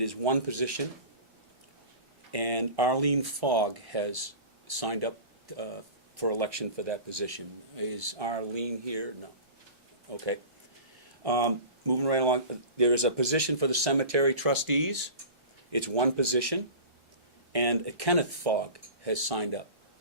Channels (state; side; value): late; left; 1.4 ms